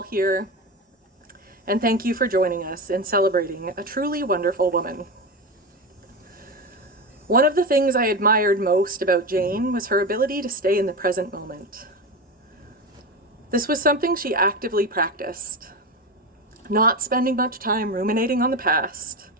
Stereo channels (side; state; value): both; normal; correlation 0.20